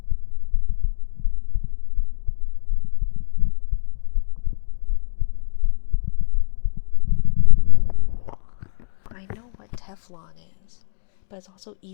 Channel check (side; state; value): right; silent; digital silence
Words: I know what Teflon is, but it's also